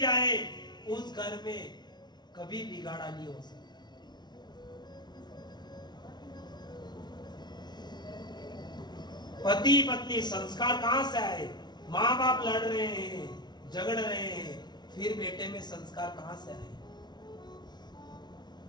जाए उस घर में कभी बिगाड़ा नहीं हो सकता। पति पत्नी संस्कार कहां से आए? माँ बाप लड़ रहे हैं, झगड़ रहे हैं, फिर बेटे में संस्कार कहां से आए?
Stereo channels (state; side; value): late; right; 0.20 ms